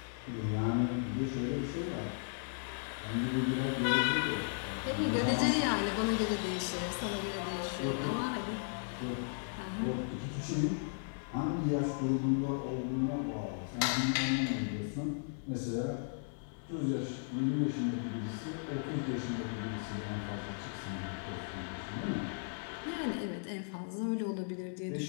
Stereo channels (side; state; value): right; silent; digital silence